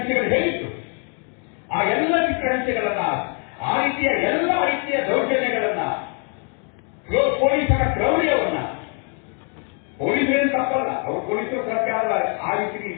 ಹೇಳಿತ್ತು, ಆ ಎಲ್ಲ ಚಿತ್ರಹಿಂಸೆಗಳನ್ನ, ಆ ರೀತಿಯ ಎಲ್ಲ ರೀತಿಯ ದೌರ್ಜನ್ಯಗಳನ್ನ, ಪೊಲೀಸರ ಕ್ರೌರ್ಯವನ್ನ, ಪೊಲೀಸರೇನು ತಪ್ಪಲ್ಲ, ಅವರು ಪೊಲೀಸರು ಸರ್ಕಾರದ ಆ ರೀತಿ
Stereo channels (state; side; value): quieter; right; 39.9 dB